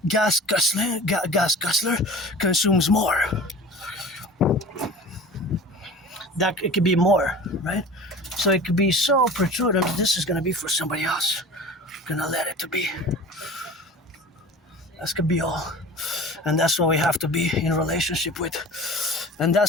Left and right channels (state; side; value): normal; both; correlation 0.39